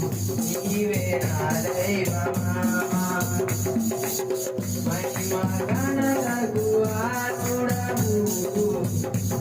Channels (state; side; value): identical; both; correlation 1.00